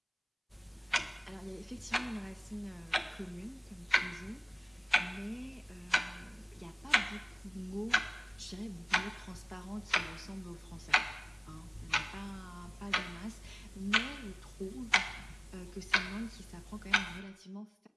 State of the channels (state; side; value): identical; both; correlation 1.00